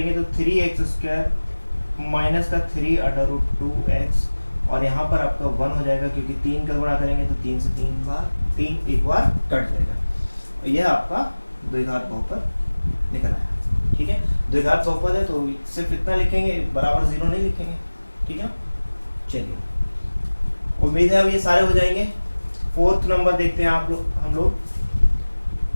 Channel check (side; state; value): both; inverted; correlation -1.00